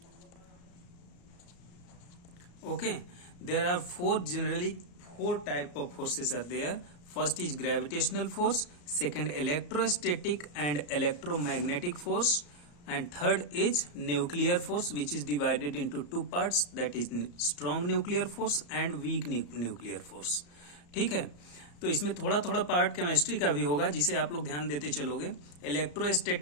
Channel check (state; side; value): late; right; 34 ms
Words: Okay, there are generally four type of forces are there. First is gravitational force, second electrostatic and electromagnetic force, and third is nuclear force, which is divided into two parts, that is strong nuclear force and weak nuclear force. ठीक है, तो इसमें थोड़ा थोड़ा part chemistry का भी होगा, जिसे आप लोग ध्यान देते चलोगे.